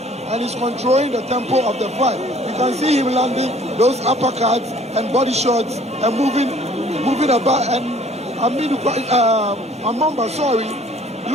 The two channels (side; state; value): both; normal; correlation 0.55